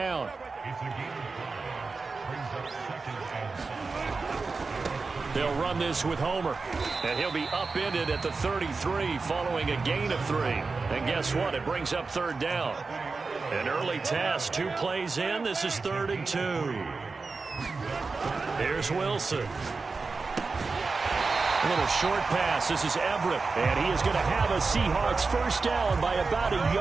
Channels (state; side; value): quieter; left; 4.2 dB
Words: They'll run this with Homer. And he'll be upended at the 33 following a gain of 3. And guess what? It brings up third down. An early test, 2 plays in. This is 3rd and 2. Here's Wilson. A little short pass. This is Everett. And he is going to have a Seahawks first down by about a